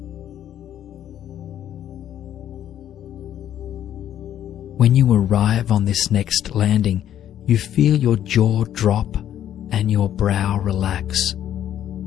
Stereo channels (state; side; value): quieter; right; 10.9 dB